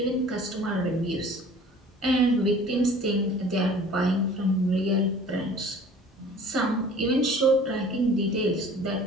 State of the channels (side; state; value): both; normal; correlation 0.47